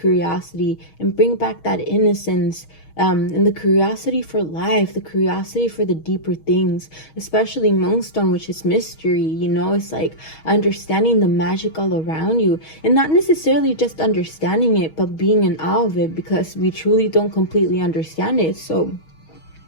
and bring back that innocence, and the curiosity for life, the curiosity for the deeper things, especially Moonstone, which is mystery. It's like understanding the magic all around you, and not necessarily just understanding it, but being in awe of it, because we truly don't completely understand it. So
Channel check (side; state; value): right; late; 6.3 ms